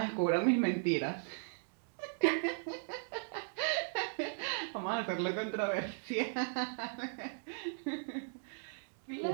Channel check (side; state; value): left; silent; digital silence